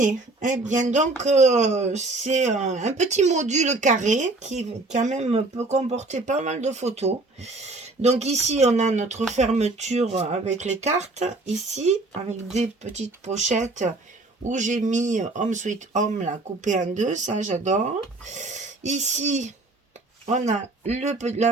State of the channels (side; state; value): left; quieter; 3.2 dB